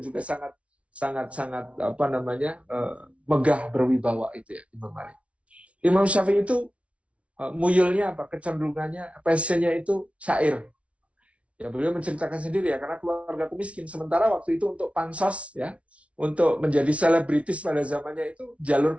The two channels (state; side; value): late; left; 0.063 ms